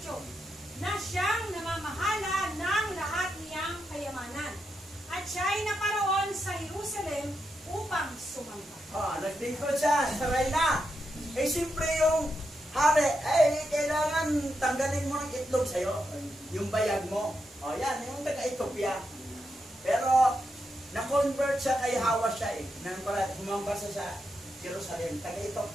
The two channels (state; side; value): normal; both; correlation 0.85